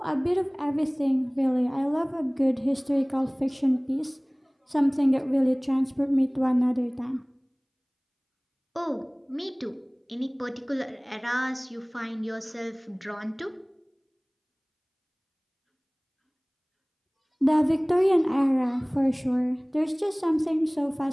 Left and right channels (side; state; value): both; identical; correlation 1.00